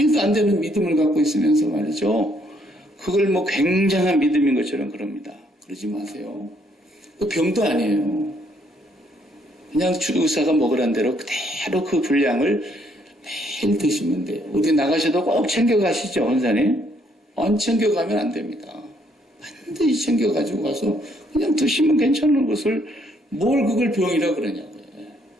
안 되는 믿음을 갖고 있으면서 말이죠. 그걸 뭐 굉장한 믿음인 것처럼 그럽니다. 그러지 마세요. 그 병도 아니에요. 그냥 의사가 먹으란 대로 그대로 그 분량을 매일 드시면 돼요. 어디 나가셔도 꼭 챙겨가시죠, 원사님? 안 챙겨가면 안 됩니다. 반드시 챙겨가지고 가서 그냥 드시면 괜찮은 것을 뭘 그걸 병이라 그러냐고요.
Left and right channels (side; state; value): both; normal; correlation 0.69